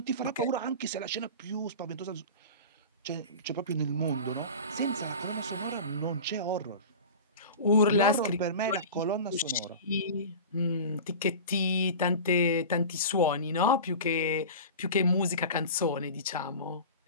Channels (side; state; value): both; inverted; correlation -0.33